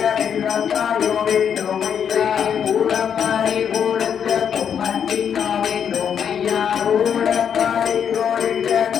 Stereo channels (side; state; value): right; quieter; 8.0 dB